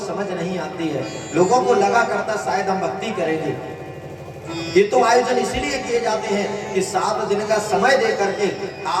नहीं आती है। लोगों को लगा करता शायद हम भक्ति करेंगे। ये तो आयोजन इसीलिए किए जाते हैं कि 7 दिन का समय दे करके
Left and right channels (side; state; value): both; identical; correlation 1.00